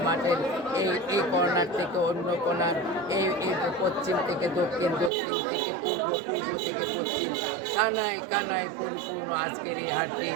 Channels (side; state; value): left; drops out; at 5.1 s